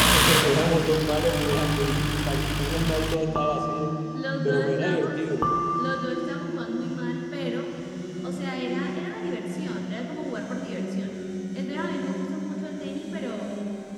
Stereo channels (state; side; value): identical; both; correlation 1.00